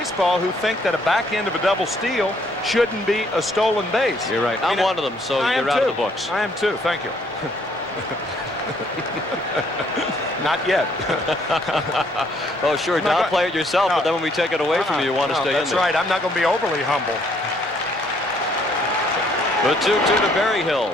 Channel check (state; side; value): normal; both; correlation 0.66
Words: who think that a back end of a double steal shouldn't be a stolen base. You're right. I'm one of them, so you're out of the books. I am too. Thank you. Not yet. Oh, sure. Downplay it yourself, but then when we take it away from you, you want to stay in there. That's right. I'm not going to be overly humble. The 2-2 to Berryhill.